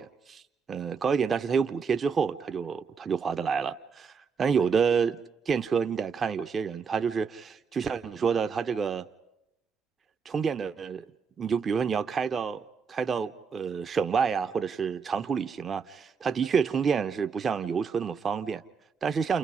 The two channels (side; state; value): left; quieter; 5.9 dB